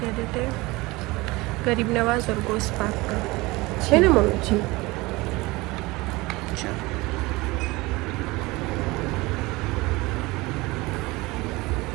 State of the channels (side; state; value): left; quieter; 22.0 dB